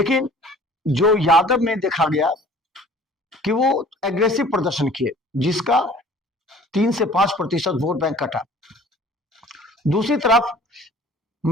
जो यादव में देखा गया कि वो एग्रेसिव प्रदर्शन किए, जिसका 3 से 5% वोट बैंक कटा। दूसरी तरफ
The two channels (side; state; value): both; normal; correlation 0.49